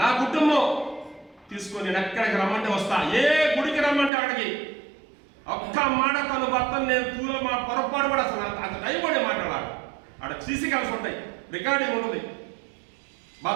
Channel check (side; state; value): left; drops out; at 4.1 s